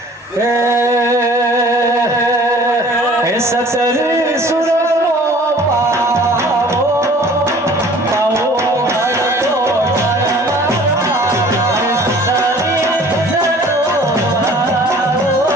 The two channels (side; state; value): both; normal; correlation 0.50